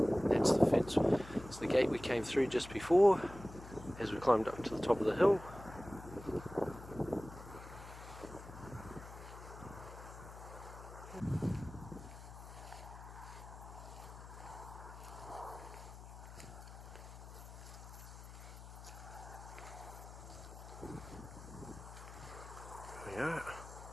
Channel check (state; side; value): noise; left; hum, 14 dB below the sound